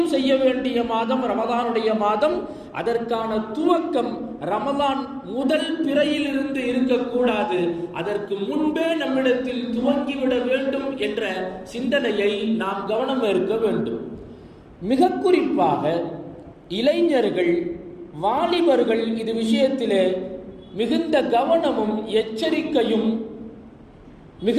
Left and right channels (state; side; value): identical; both; correlation 1.00